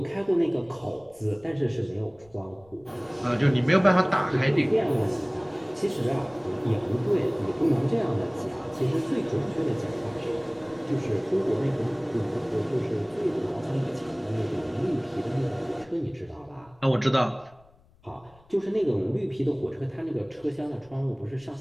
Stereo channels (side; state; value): left; noise; rumble, 29 dB below the sound